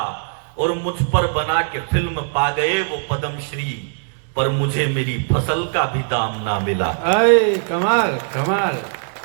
और मुझ पर बना के फिल्म पा गए वो पद्मश्री, पर मुझे मेरी फसल का भी दाम ना मिला। अरे कमाल कमाल,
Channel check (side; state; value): left; silent; 66 dB below the other